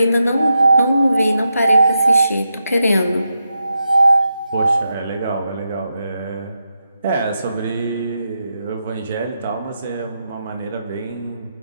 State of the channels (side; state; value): both; inverted; correlation -0.86